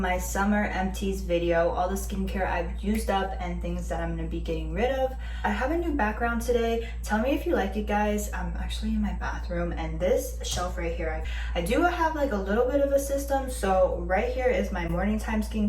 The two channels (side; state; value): both; identical; correlation 1.00